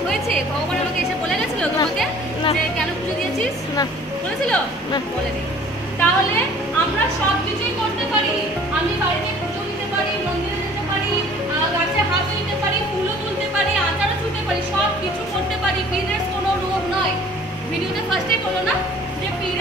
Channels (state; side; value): normal; both; correlation 0.51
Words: হয়েছে? ভগবান আমাকে এসে বলে গেছিল তোমাকে না। যে কেন পুজো দিয়েছিস? না। বলেছিল? না। বলেনি। তাহলে আমরা সব কিছুই করতে পারি। আমি বাড়িতে পুজো দিতে পারি, মন্দিরে যেতে পারি, গাছে হাত দিতে পারি, ফুলও তুলতে পারি, আচারও ছুঁতে পারি, সব কিছু করতে পারি। পিরিয়ডস কোনো রোগ নয়। ভিডিওতে ফার্স্টেই বলো না যে